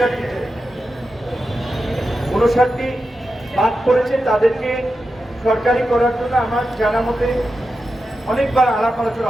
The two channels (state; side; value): normal; both; correlation 0.90